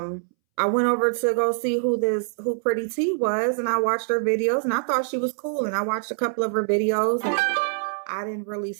I went over to go see who Pretty T was, and I watched her videos and I thought she was cool. And I watched a couple of her videos and I didn't really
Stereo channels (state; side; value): silent; left; 62 dB below the other